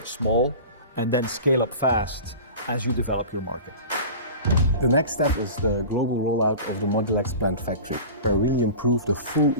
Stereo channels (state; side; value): inverted; both; correlation -0.35